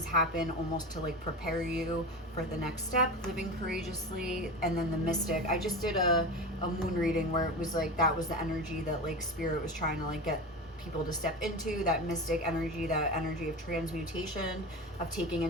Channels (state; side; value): normal; both; correlation 0.26